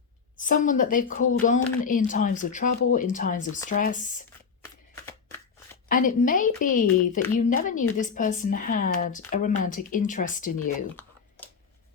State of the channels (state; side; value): quieter; right; 5.9 dB